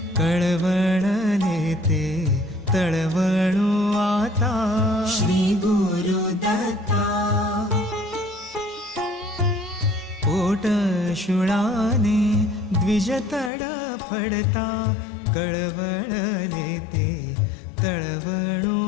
कळवळले ते तळवळो आता श्री गुरुदत्ता पोट शुळाने द्विज तडफडता कळवळले ते तळवळो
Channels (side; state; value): right; drops out; at 13.5 s